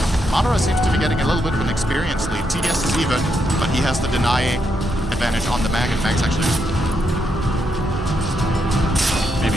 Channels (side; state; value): both; normal; correlation 0.80